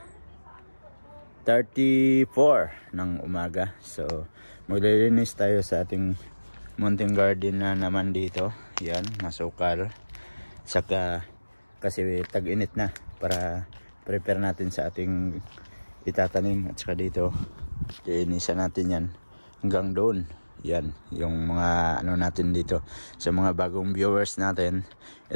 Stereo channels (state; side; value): inverted; both; correlation -1.00